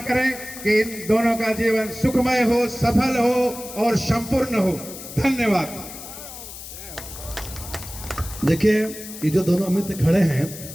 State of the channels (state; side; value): noise; left; hiss, 12 dB below the sound